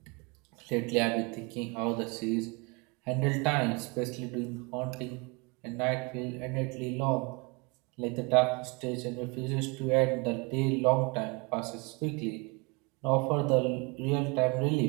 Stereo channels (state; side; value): quieter; left; 29.2 dB